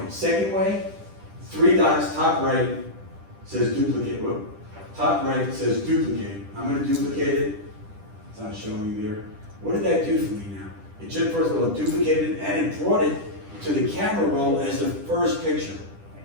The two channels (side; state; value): left; late; 10 ms